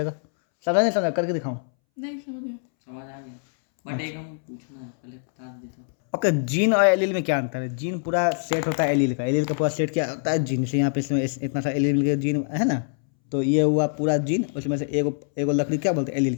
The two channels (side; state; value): right; silent; 62 dB below the other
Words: समझा नहीं समझा, करके दिखाऊं, नहीं समझ गया। समझ आ गया बट एक हम पूछना है पहले बता देता। ओके। जीन और एलील में क्या अंतर है, जीन पूरा सेट होता है एलील का, एलील का पूरा सेट क्या होता है जीन से, यहाँ पे इसमें इतना सा एलील के जीन है ना, तो ये हुआ पूरा जीन, उसमें से एगो एगो लकड़ी क्या बोलते हैं, एलील,